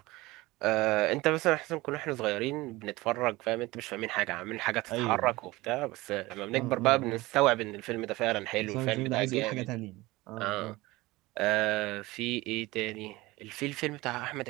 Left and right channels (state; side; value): quieter; left; 20.3 dB